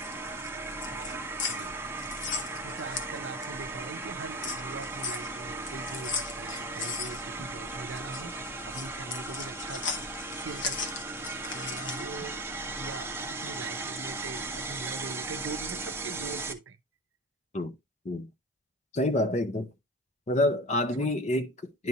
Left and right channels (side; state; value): both; normal; correlation 0.29